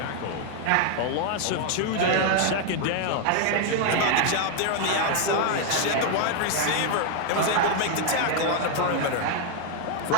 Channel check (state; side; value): different; both; correlation 0.00